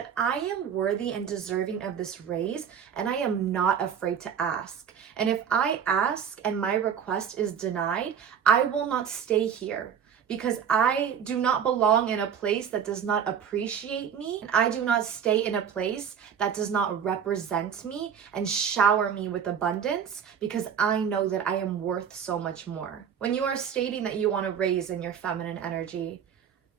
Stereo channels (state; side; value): quieter; left; 7.8 dB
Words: I am worthy and deserving of this raise, and I am not afraid to ask. And if I ask and my request is denied, I will not stay here, because I do not belong in a place that does not appreciate me. I do not stay in a place that does not represent me and shower me with abundance, because I know that I am worth so much more. When you are stating that you want to raise in your feminine energy,